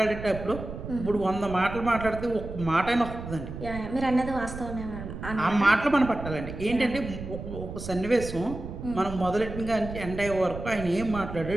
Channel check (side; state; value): right; noise; rumble, 9 dB below the sound